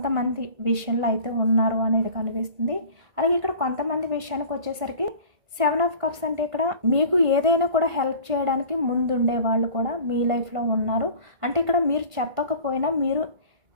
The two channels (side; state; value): left; late; 1.5 ms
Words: విషయంలో అయితే ఉన్నారు అనేది కనిపిస్తుంది. అలాగే ఇక్కడ కొంతమంది విషయానికి వచ్చేసరికి 7 ఆఫ్ కప్స్ అంటే ఇక్కడ మీకు ఏదైనా కూడా హెల్ప్ చేయడానికి ముందుండే వాళ్ళు కూడా మీ లైఫ్లో ఉన్నారు. అంటే ఇక్కడ మీరు చెప్పకపోయినా మీరు